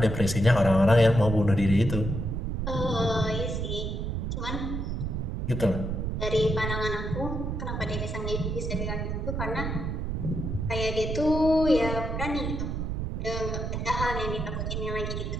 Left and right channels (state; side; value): noise; right; rumble, 2 dB below the sound